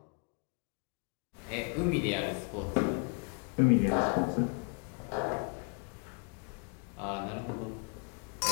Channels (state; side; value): quieter; right; 37.9 dB